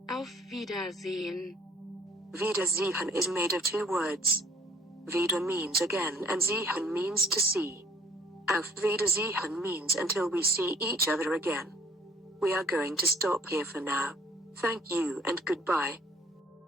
auf Wiedersehen. Wiedersehen is made of two words. Wieder means again and sehen means to see. Auf Wiedersehen means until we see each other again. We are going to stop here for now. Thank you and goodbye.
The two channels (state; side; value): normal; both; correlation 0.57